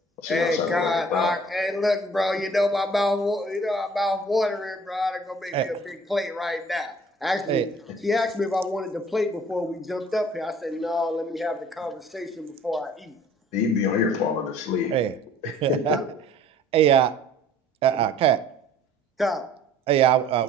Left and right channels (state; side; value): normal; both; correlation 0.52